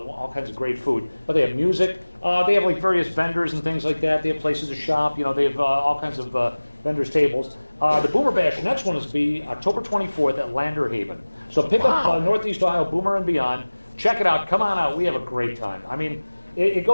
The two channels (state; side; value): inverted; both; correlation -1.00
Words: kinds of great food. But they have music. They have like various vendors and things like that. They have places to shop. You know, they have all kinds of vendors' tables. The Boomer Bash, the next one is to be October 24th at Lander Haven. So pick up Northeast Ohio Boomer and beyond. Check it out. Come on out. We have a great time. I mean, it